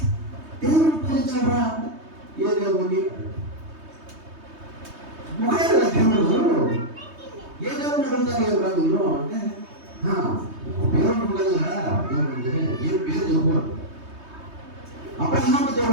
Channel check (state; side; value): late; left; 3.2 ms